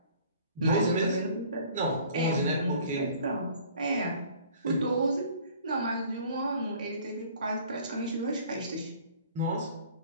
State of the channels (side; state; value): both; inverted; correlation -0.51